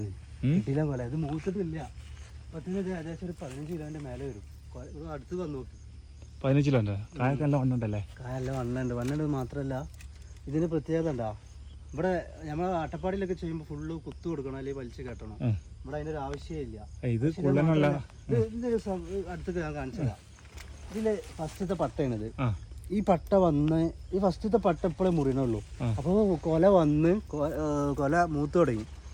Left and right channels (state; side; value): identical; both; correlation 1.00